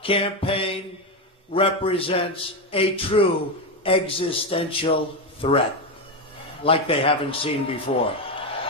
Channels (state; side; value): normal; both; correlation 0.11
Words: campaign represents a true existential threat, like they haven't seen before.